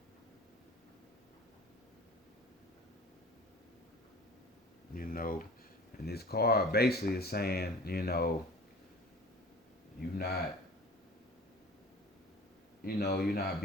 You know, and this card basically is saying, you not, you're not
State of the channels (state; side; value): normal; both; correlation 0.43